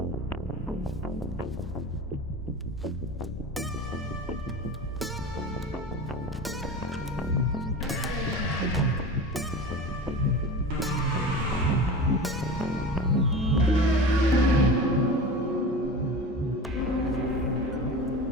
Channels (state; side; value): normal; both; correlation 0.32